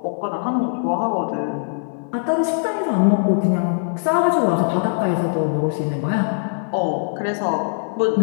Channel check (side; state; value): right; silent; 59 dB below the other